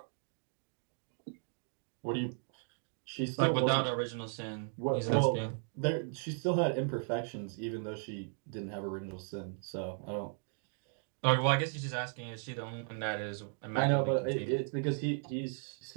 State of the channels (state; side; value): silent; left; 54 dB below the other